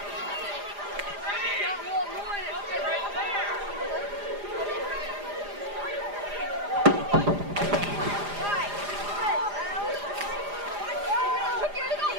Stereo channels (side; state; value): left; late; 4.9 ms